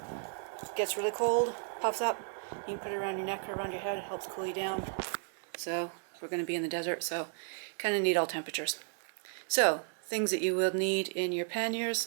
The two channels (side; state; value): left; silent; 55 dB below the other